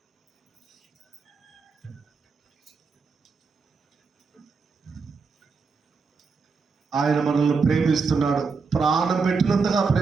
ఆయన మనల్ని ప్రేమిస్తున్నాడు, ప్రాణం పెట్టినంతగా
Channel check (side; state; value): left; quieter; 4.8 dB